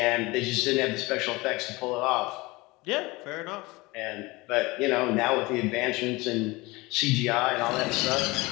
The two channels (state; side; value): quieter; right; 22.7 dB